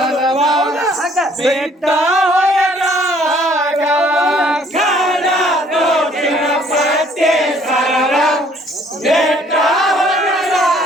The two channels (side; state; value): both; normal; correlation 0.60